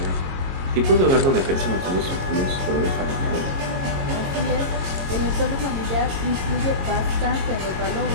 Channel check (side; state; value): left; late; 22 ms